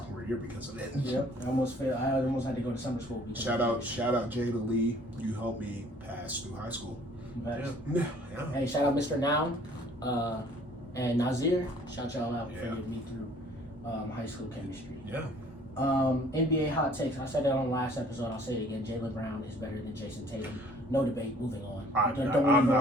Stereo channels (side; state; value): both; normal; correlation 0.56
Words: year because of it. Yep. I almost failed. I almost had to go to summer school. Shout out Jada Lee. You helped me pass through high school. Yeah. Yeah. Hey, shout out Mr. Noun and Nazir. Shout y'all out for getting me through high school chemistry. Yeah. NBA hot takes. I said that on the last episode. I'll say it again. Jaylen Brown is better than Jason Tatum. No debate. Moving on. I'm not